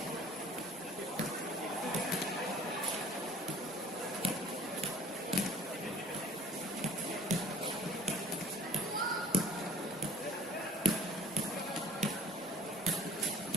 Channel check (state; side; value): normal; both; correlation 0.51